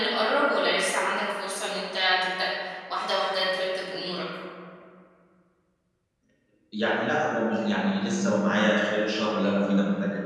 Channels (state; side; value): identical; both; correlation 1.00